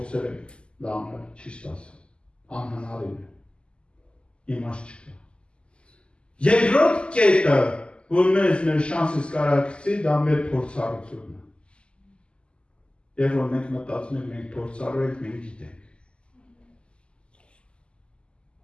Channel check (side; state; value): right; late; 0.052 ms